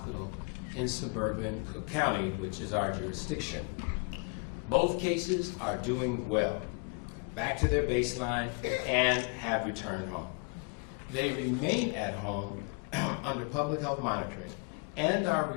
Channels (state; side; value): quieter; right; 35.6 dB